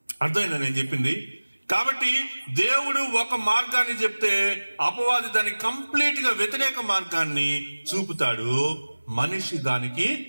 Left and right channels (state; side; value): inverted; both; correlation -1.00